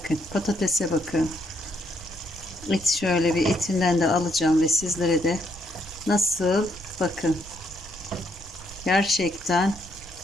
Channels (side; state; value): right; noise; rumble, 18 dB below the sound